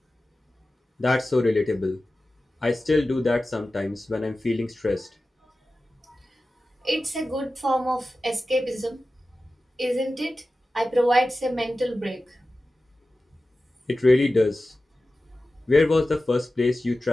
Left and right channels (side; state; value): both; normal; correlation 0.95